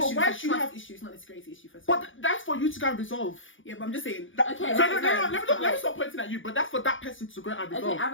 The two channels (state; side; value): late; right; 0.57 ms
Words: why should you have issue? It's not an insecurity issue first. But that's for you to go and resolve. Yeah, but I'm just saying. Okay. So let me stop pointing at you. But that's for that person to go and resolve. Okay, I